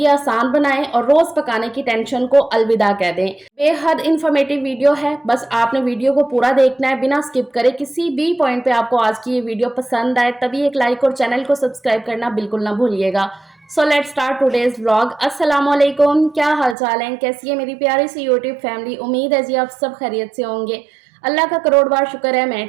आसान बनाएं और रोज पकाने की टेंशन को अलविदा कह दें। बेहद इंफॉर्मेटिव वीडियो है, बस आपने वीडियो को पूरा देखना है बिना स्किप करे। किसी भी पॉइंट पे आपको आज की ये वीडियो पसंद आए तभी एक लाइक और चैनल को सब्सक्राइब करना बिल्कुल ना भूलिएगा। So let's start today's vlog. अस्सलाम वालेकुम, क्या हाल चाल है, कैसी है मेरी प्यारी सी यूट्यूब फैमिली। उम्मीद है जी आप सब खैरियत से होंगे। अल्लाह का करोड़ बार शुक्र है मैं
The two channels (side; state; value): left; drops out; at 16.8 s